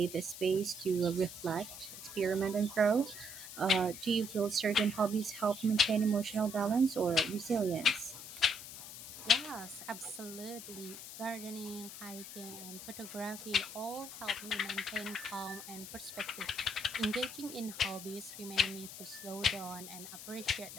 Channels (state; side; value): noise; left; hiss, 11 dB below the sound